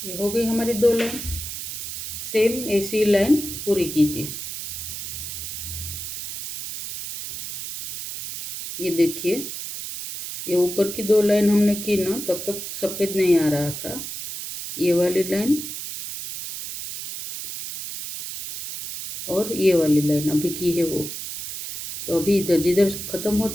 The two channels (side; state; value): right; noise; hiss, 7 dB below the sound